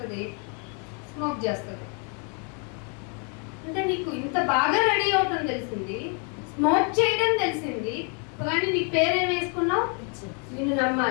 స్మోక్ చేస్తుంది. అంటే నీకు ఇంత బాగా రెడీ అవటం తెలిసింది, స్మోక్ చేయడం తెలిసింది, కానీ నీ పేరేం వేసుకున్నావు? నిన్ను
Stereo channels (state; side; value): quieter; right; 38.2 dB